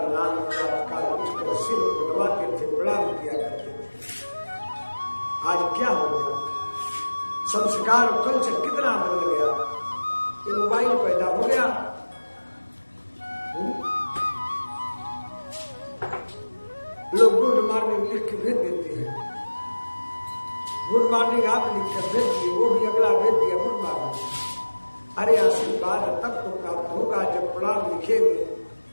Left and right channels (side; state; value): both; inverted; correlation -1.00